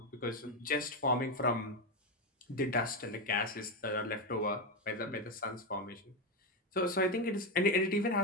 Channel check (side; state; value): both; normal; correlation 0.10